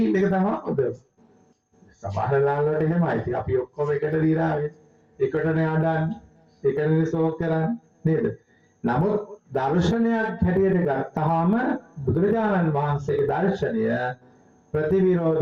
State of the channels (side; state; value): both; identical; correlation 1.00